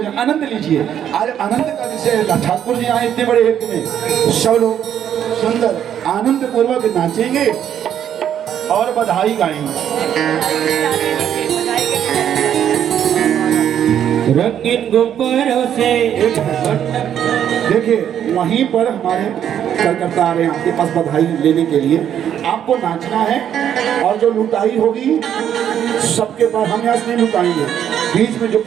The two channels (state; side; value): quieter; left; 9.7 dB